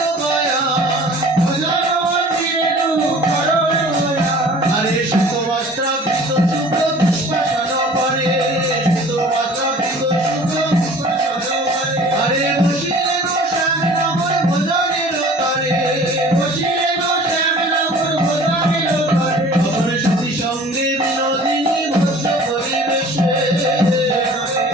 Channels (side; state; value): both; normal; correlation 0.47